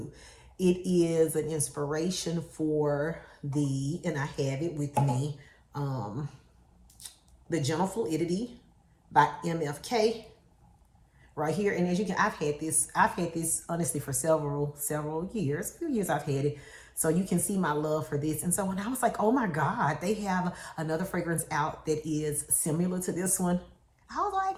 It is an inspiration for and I have it with me, the Gentle Fluidity by MFK. Right here, and as you can, I've had this honestly for several years, a few years I've had it. So you can see my love for this. And so when I was like, oh my God, they have another fragrance out that is similar to this one, I was like,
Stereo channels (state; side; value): identical; both; correlation 1.00